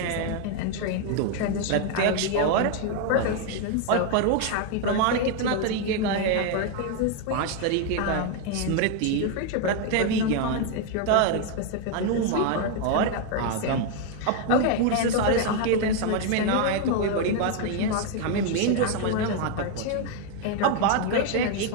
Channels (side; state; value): both; different; correlation 0.01